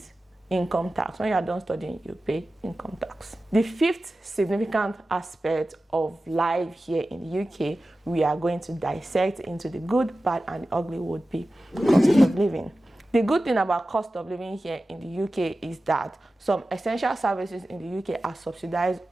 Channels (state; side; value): normal; both; correlation 0.95